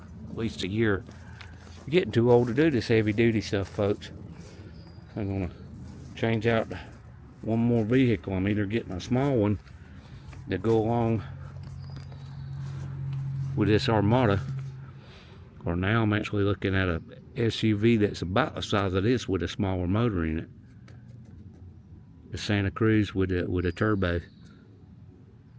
at least a year. I'm getting too old to do this heavy duty stuff, folks. I'm going to change out one more vehicle. I'm either getting a small one to go along with this Armada, or now I'm actually looking at a SUV that's about the size of this with a smaller motor in it. The Santa Cruz with a turbo.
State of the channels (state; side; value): identical; both; correlation 1.00